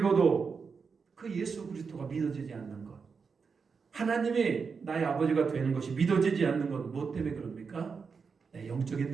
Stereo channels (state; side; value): quieter; left; 5.4 dB